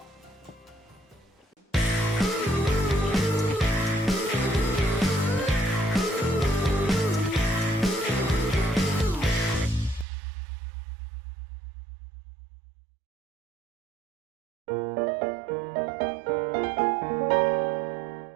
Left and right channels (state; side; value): drops out; left; at 10.1 s